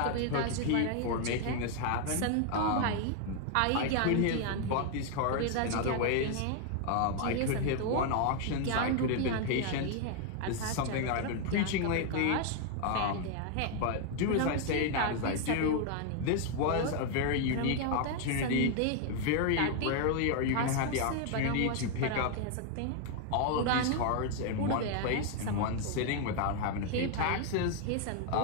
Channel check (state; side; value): different; both; correlation 0.00